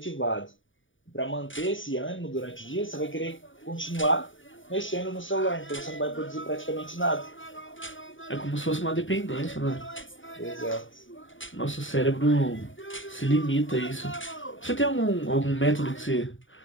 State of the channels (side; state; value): right; late; 0.57 ms